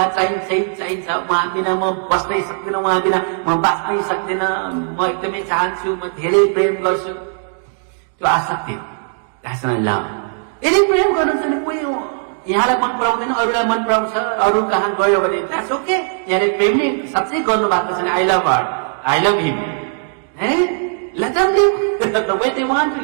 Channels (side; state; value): left; silent; digital silence